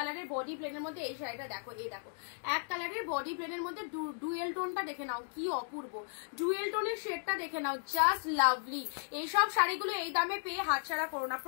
বডি প্লেনের মধ্যে এই শাড়িটা দেখো, এই দেখো এক কালারের বডি প্লেনের মধ্যে ডুয়েল টোনটা দেখে নাও, কি অপূর্ব ডুয়েল টোনের শেডটা দেখে নাও, জাস্ট লাভলি। এইসব শাড়িগুলো এই দামে পেয়ে হাতছাড়া করো না,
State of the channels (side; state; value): right; silent; digital silence